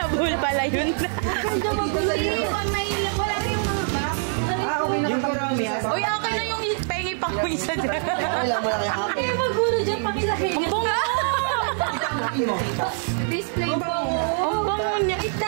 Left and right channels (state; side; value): silent; left; 63 dB below the other